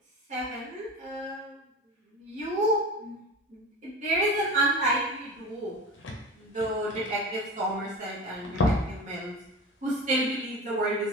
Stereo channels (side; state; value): both; normal; correlation 0.31